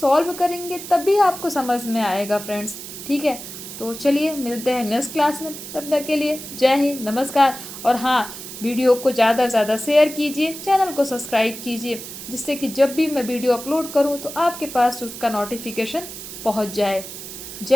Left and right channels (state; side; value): noise; right; hiss, 11 dB below the sound